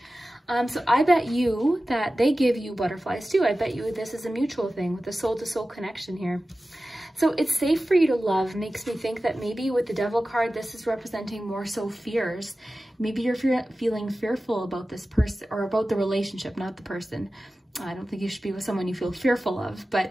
So I bet you that they give you butterflies too. I bet you this is a mutual thing with the soul-to-soul connection here. So it's safe for you to love makes me think that maybe with the Devil card, this is representing more so fears. Maybe you're feeling fearful about this person or about the relationship, not the person. I don't think you should be with someone you feel fearful of,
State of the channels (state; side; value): normal; both; correlation 0.95